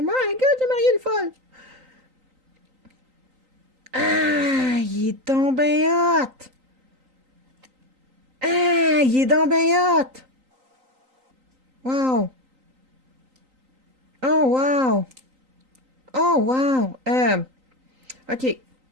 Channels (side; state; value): left; late; 3.9 ms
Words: My God, j'ai marié une folle! Ah, il est donc ben hot! Ah, il est donc ben hot! Wow! Oh, wow! Oh, wow! OK.